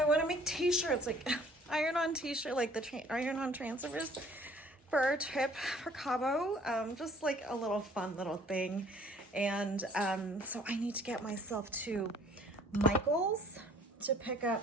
want to make t-shirts, like iron-on t-shirt, like the iron-on transfers for our trip for Cabo. Just like a little fun little thing. And so I need to get myself to Michael's to pick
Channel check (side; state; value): both; normal; correlation 0.55